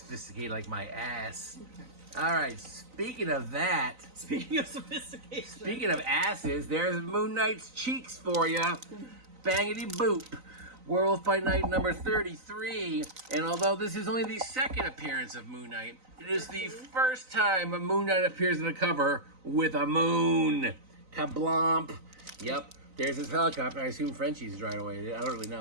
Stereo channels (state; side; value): late; left; 3.9 ms